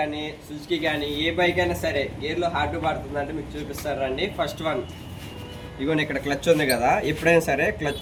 సుజుకి కానీ ఏ బైక్ అయినా సరే గేర్లో హార్డ్ పడుతుందంటే మీకు చూపిస్తారు రండి. ఫస్ట్ వన్ ఇగోండి, ఇక్కడ క్లచ్ ఉంది కదా. ఎప్పుడైనా సరే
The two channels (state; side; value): identical; both; correlation 1.00